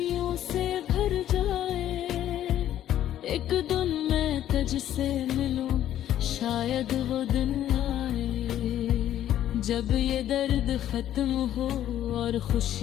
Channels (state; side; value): quieter; right; 11.8 dB